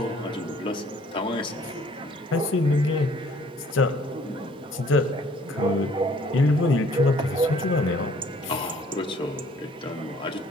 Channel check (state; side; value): normal; both; correlation 0.58